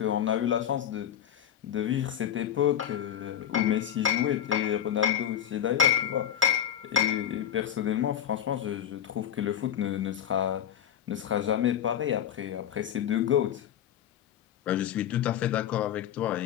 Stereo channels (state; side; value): quieter; right; 10.0 dB